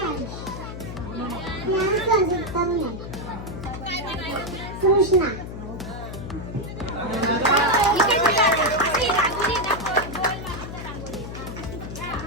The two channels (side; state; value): left; noise; hum, 9 dB below the sound